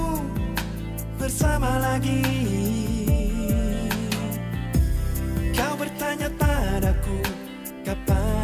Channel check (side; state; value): both; identical; correlation 1.00